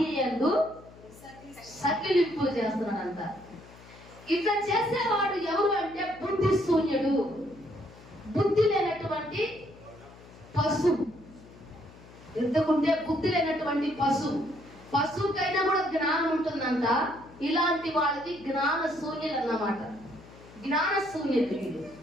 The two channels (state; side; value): noise; left; hum, 21 dB below the sound